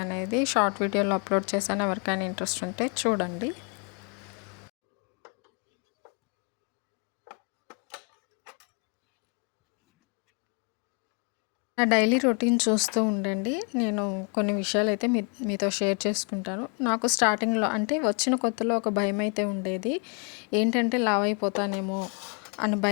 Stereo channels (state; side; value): quieter; right; 35.6 dB